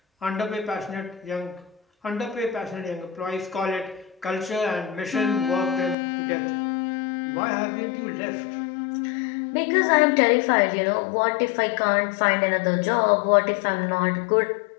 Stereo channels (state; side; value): drops out; right; at 6.0 s